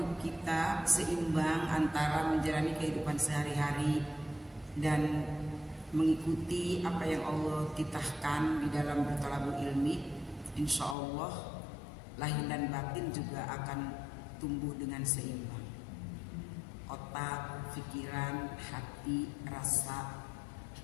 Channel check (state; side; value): drops out; right; at 11.0 s